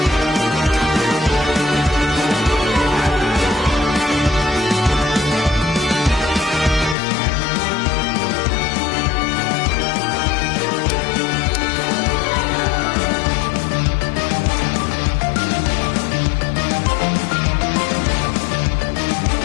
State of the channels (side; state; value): right; drops out; at 7.0 s